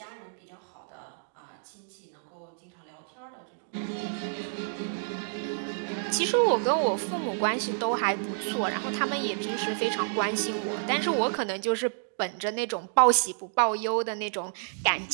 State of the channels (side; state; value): left; silent; digital silence